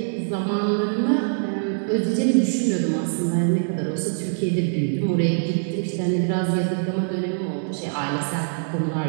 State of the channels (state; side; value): silent; left; digital silence